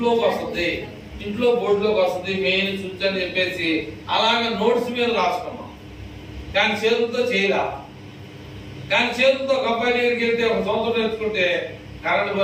వస్తుంది, ఇంట్లో బోర్డులోకి వస్తుంది, మెయిన్ స్విచ్ అని చెప్పేసి అలాగే నోట్స్ మీద రాసుకున్నాం. కానీ చేతులతో చేయలా. కానీ చేతులతో ఒక అబ్బాయి దగ్గరికి వెళ్తే 1 సంవత్సరం నేర్చుకుంటే కరెంట్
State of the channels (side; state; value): both; identical; correlation 1.00